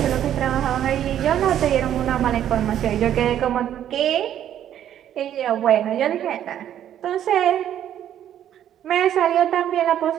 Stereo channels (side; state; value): left; quieter; 10.7 dB